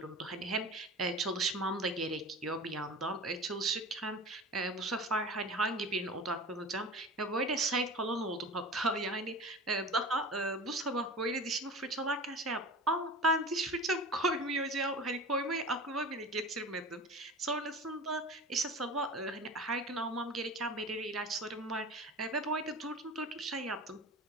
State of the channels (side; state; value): both; normal; correlation 0.34